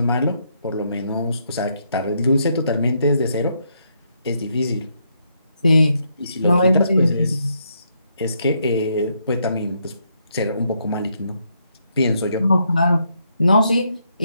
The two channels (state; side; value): inverted; both; correlation -0.76